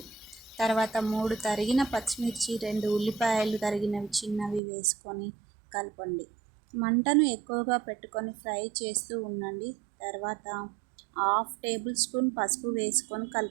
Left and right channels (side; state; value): left; drops out; at 4.6 s